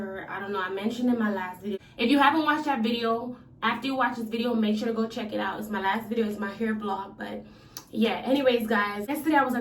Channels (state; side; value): identical; both; correlation 1.00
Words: I don't know, I mentioned in my last video. If you haven't watched that video, after you watch this video, make sure to go check it out. It's my last video. It's my hair vlog, but yeah, anyways, guys, yesterday I was